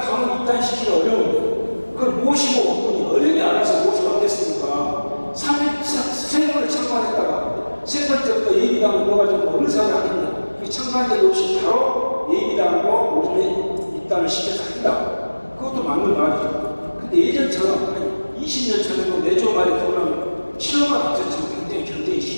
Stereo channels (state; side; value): inverted; both; correlation -1.00